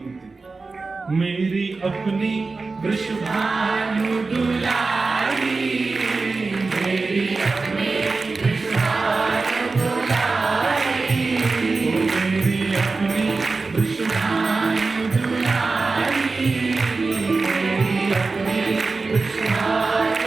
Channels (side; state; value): left; quieter; 3.9 dB